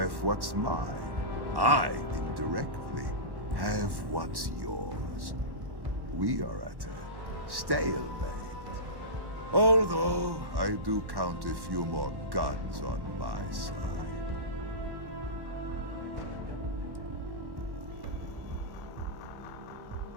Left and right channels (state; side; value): late; left; 1.1 ms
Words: what's mine. I, indirectly, have what's yours. We are at a stalemate. Although, I do count a few more guns on my side.